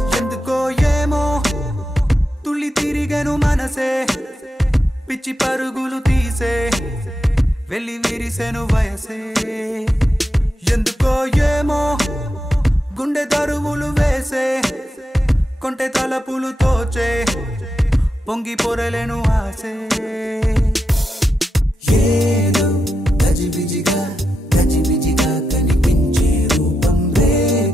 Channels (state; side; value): normal; both; correlation 0.87